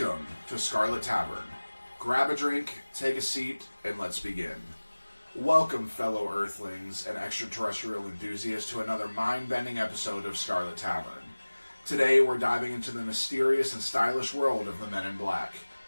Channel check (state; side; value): inverted; both; correlation -1.00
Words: to Scarlet Tavern. Grab a drink, take a seat, and let's begin. Welcome, fellow Earthlings and extraterrestrial enthusiasts, to another mind-bending episode of Scarlet Tavern. Today, we're diving into the mysterious and stylish world of the Men in Black.